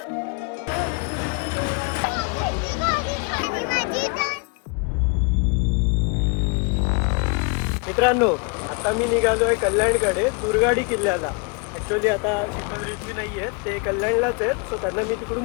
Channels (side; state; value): right; quieter; 33.2 dB